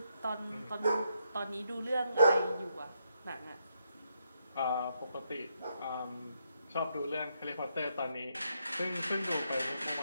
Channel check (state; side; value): inverted; both; correlation -0.79